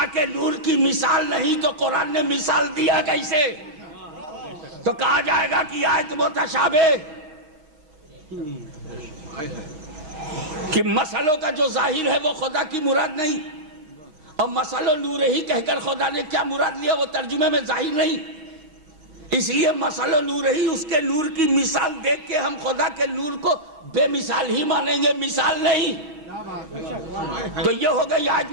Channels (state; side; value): late; left; 6.4 ms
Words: کے نور کی مثال نہیں تو قرآن نے مثال دیا کیسے؟ تو کہا جائے گا کہ آیت متشابہ، کہ مسئلوں کا جو ظاہر ہے وہ خدا کی مراد نہیں، اور مسئلہ نور ہی کہہ کر خدا نے کیا مراد لیا وہ ترجمے میں ظاہر نہیں، اس لیے مسئلہ نور ہی، اس کے نور کی مثال دیکھ کے ہم خدا کے نور کو بے مثال ہی مانیں گے، مثال نہیں۔ تو یہ ہو گئی آیت